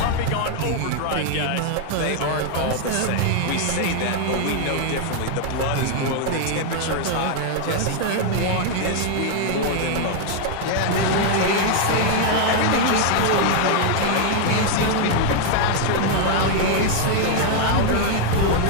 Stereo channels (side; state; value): both; different; correlation 0.00